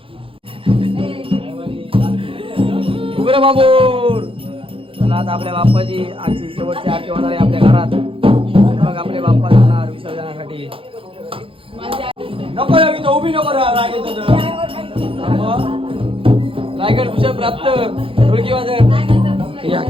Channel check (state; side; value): late; left; 0.26 ms